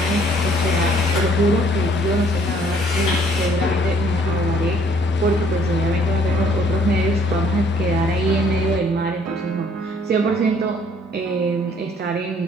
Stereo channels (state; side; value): normal; both; correlation 0.61